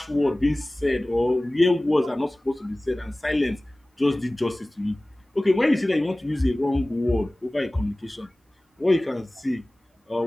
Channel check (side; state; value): both; normal; correlation 0.98